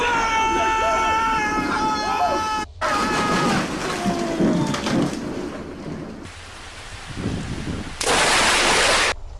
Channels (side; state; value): both; identical; correlation 1.00